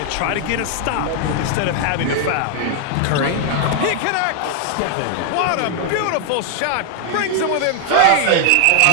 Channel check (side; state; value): both; different; correlation 0.00